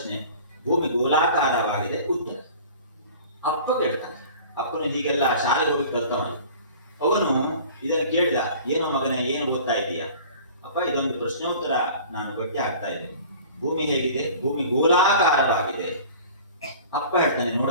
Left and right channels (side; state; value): both; inverted; correlation -0.43